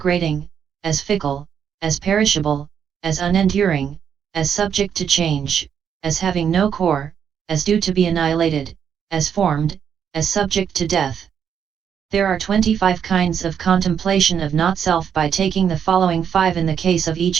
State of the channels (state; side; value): quieter; left; 8.0 dB